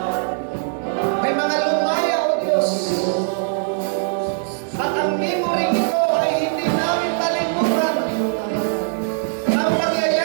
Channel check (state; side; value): silent; left; 65 dB below the other